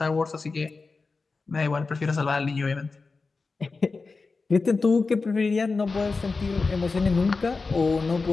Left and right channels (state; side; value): quieter; right; 4.1 dB